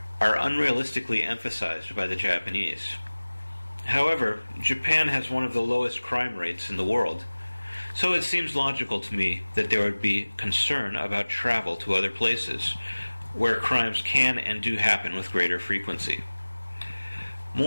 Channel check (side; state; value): both; inverted; correlation -1.00